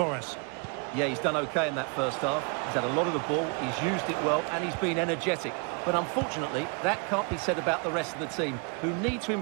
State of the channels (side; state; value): left; quieter; 35.3 dB